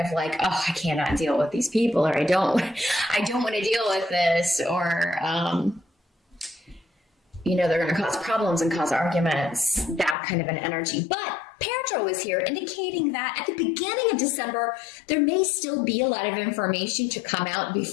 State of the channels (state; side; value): drops out; right; at 10.2 s